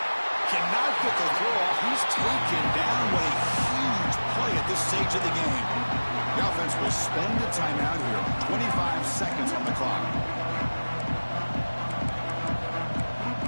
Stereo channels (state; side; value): inverted; both; correlation -1.00